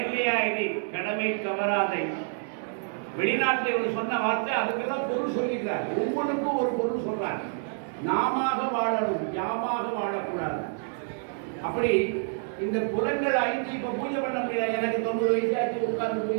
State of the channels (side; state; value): left; silent; digital silence